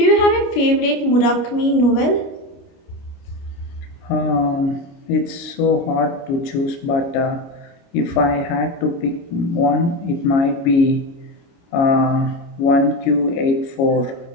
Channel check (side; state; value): right; late; 29 ms